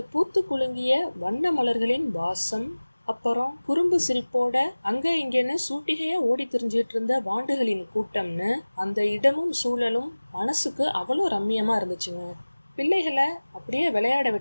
பூத்து குலுங்கிய வண்ண மலர்களின் வாசம், அப்புறம் குறும்பு சிரிப்போட அங்க இங்கன்னு சூட்டிகையா ஓடி திரிஞ்சிட்டு இருந்த வாண்டுகளின் கூட்டம்னு அந்த இடமும் சூழலும் மனசுக்கு அவ்வளோ ரம்மியமா இருந்துச்சுங்க. பிள்ளைகளை அப்படியே விளையாட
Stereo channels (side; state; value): both; inverted; correlation -1.00